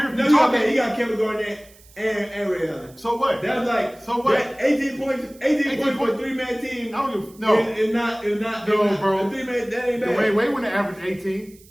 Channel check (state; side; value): noise; right; hiss, 26 dB below the sound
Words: No, be you got, talking. he got Kevin Garnett and Ray Allen. So what? That's like So what? That 18 points. 18 points for a points. 3-man team. I don't give no. It's not. No, bro. A 3-man. That ain't bad. Dwyane Wade wouldn't have averaged 18.